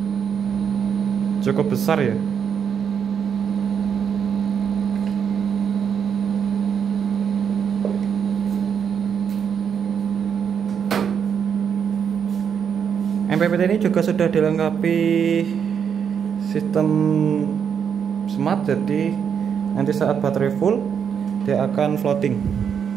Cukup besar ya. MPPT ini juga sudah dilengkapi sistem smart, jadi nanti saat baterai full dia akan floating.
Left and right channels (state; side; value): quieter; left; 7.5 dB